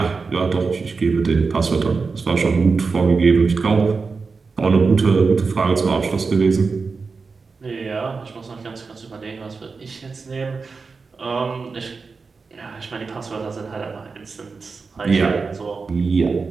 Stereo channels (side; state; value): left; quieter; 4.6 dB